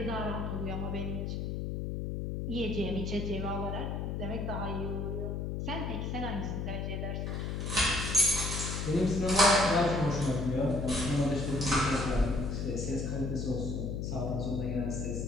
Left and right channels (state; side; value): noise; left; hum, 2 dB below the sound